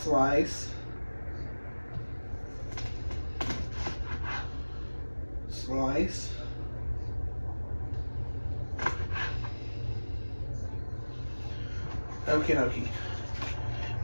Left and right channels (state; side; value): inverted; both; correlation -1.00